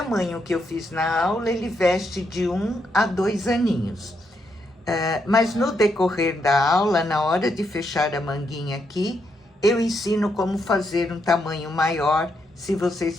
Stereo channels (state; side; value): normal; both; correlation 0.79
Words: que eu fiz na aula, ele veste de 1 a 2 aninhos. Mas no decorrer da aula, na hora de fechar a manguinha aqui, eu ensino como fazer um tamanho maior, se